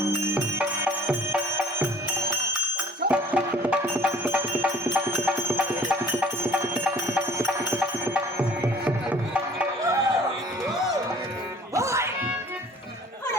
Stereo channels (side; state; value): both; normal; correlation 0.50